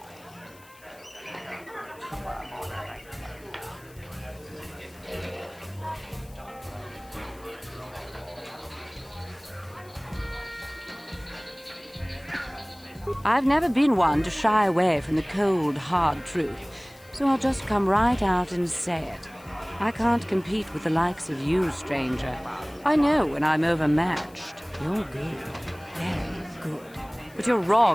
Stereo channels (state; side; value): noise; left; hiss, 25 dB below the sound